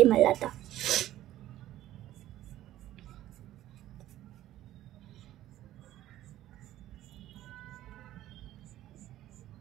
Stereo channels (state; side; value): quieter; left; 13.8 dB